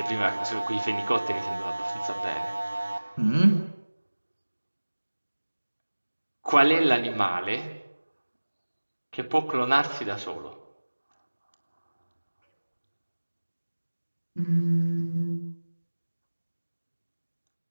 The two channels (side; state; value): both; inverted; correlation -1.00